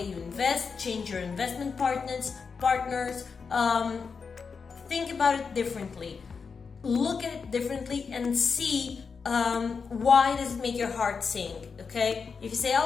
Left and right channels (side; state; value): right; quieter; 5.4 dB